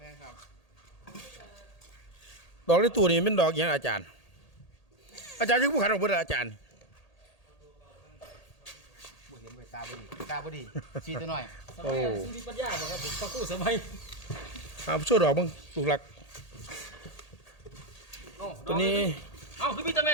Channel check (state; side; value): late; right; 1.8 ms